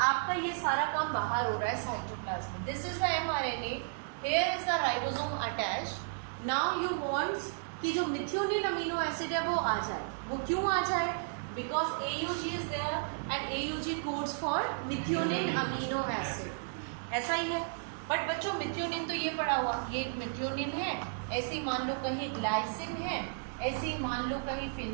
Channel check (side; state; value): left; silent; 55 dB below the other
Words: ये सारा काम बाहर हो रहा है cytoplasm. This is the mRNA, here is the ribosome attached. Now you wants कि जो मिथियोनिन अमीनो एसिड है वो आ जाए। वो क्यों आ जाए? Because AUG is there and AUG codes for methionine amino acid. ऐसा ही है। बट बच्चों मिथियोनिन तो ये पड़ा हुआ, ये मिथियोनिन है, ऐसे मान लो कहीं ग्लाइसिन है, ऐसे ही मान लो कहीं